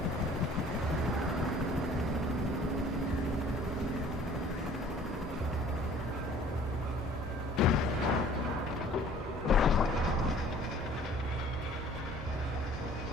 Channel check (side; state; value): both; normal; correlation 0.52